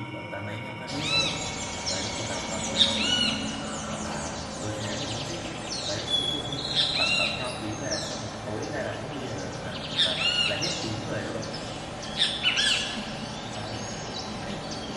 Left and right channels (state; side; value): identical; both; correlation 1.00